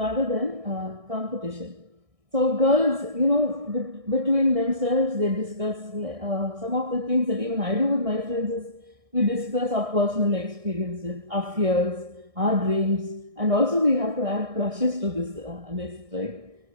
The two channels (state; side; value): late; left; 1.6 ms